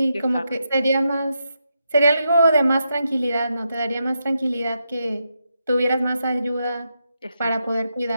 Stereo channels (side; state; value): both; inverted; correlation -0.84